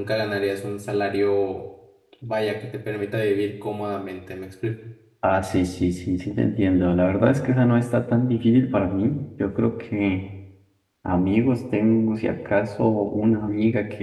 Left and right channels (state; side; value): identical; both; correlation 1.00